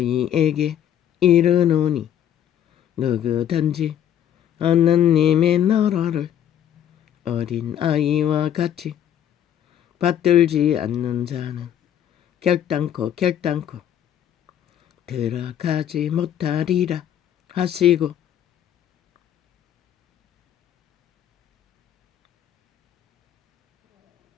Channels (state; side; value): quieter; right; 10.2 dB